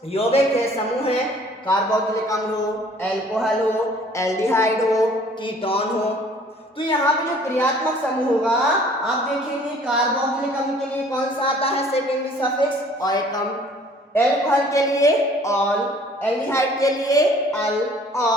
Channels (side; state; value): both; normal; correlation 0.54